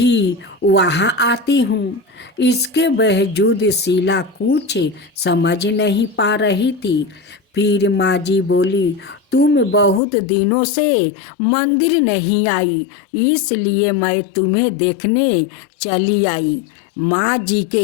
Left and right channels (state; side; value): drops out; right; at 10.0 s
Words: वहाँ आती हूँ। इसके बावजूद शीला कुछ समझ नहीं पा रही थी। फिर माँ जी बोली, तुम बहुत दिनों से मंदिर नहीं आई, इसलिए मैं तुम्हें देखने चली आई। माँ जी